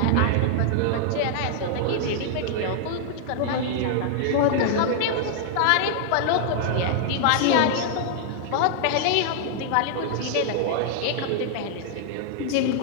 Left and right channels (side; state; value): both; different; correlation -0.01